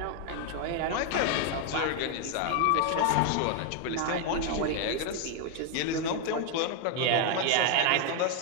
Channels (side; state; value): both; different; correlation 0.01